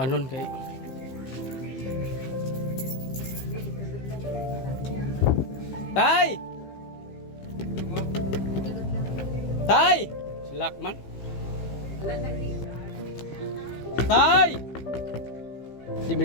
kay Tay! Tay! Silak man. Tay! Di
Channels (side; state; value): right; late; 15 ms